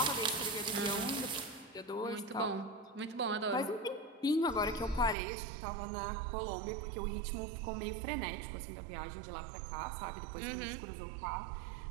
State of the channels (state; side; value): drops out; left; at 5.2 s